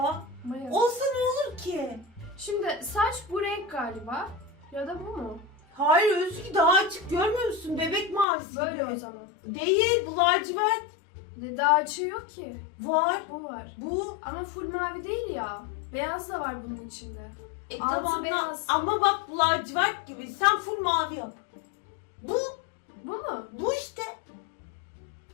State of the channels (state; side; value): drops out; right; at 8.2 s